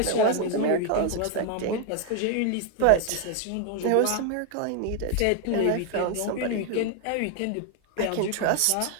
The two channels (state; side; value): different; both; correlation 0.00